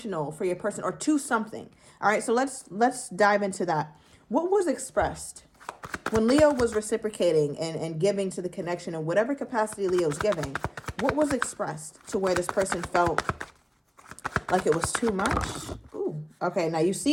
for your person, or too something. All right, so let's dive into that. What was expressed when Leo was reciprocating and giving to the connection in whatever capacity Leo's giving? What was expressed to where this person felt like it was too much? Ooh, okay, now you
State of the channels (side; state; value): both; identical; correlation 1.00